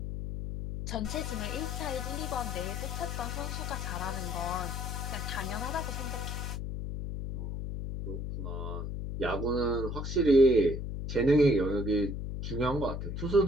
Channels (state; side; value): noise; left; hum, 4 dB below the sound